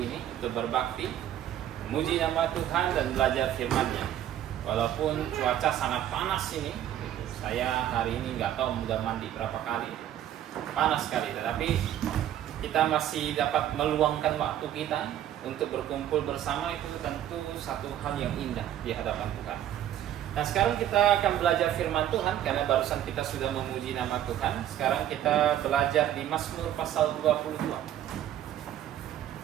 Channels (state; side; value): quieter; left; 11.4 dB